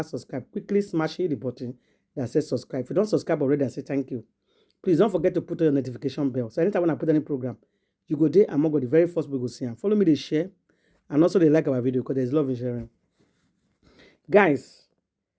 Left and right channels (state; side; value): identical; both; correlation 1.00